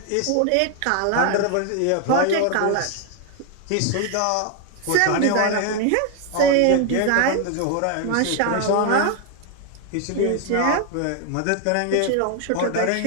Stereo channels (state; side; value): different; both; correlation 0.00